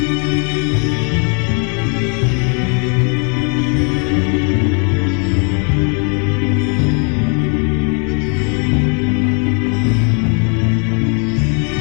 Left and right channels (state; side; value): quieter; right; 38.1 dB